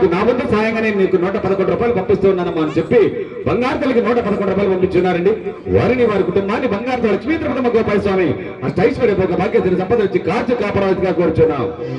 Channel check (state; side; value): identical; both; correlation 1.00